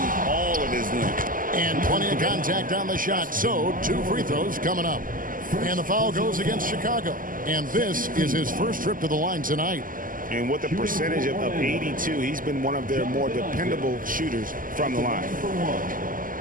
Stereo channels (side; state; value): left; late; 0.40 ms